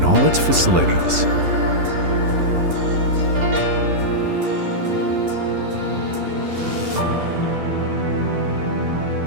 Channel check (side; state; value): left; late; 11 ms